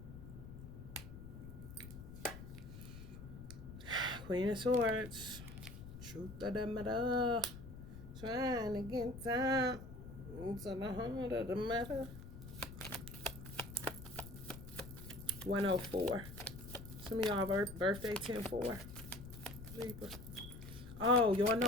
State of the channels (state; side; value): noise; left; rumble, 12 dB below the sound